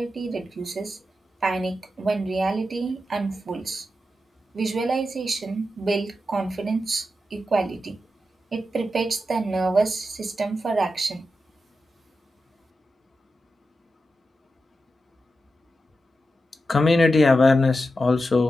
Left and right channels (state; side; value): normal; both; correlation 0.89